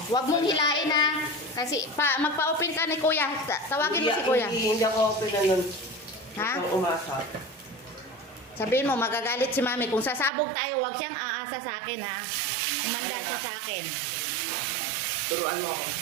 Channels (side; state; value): left; drops out; at 10.3 s